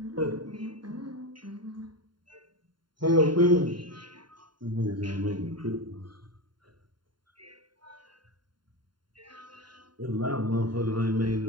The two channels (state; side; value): late; left; 0.72 ms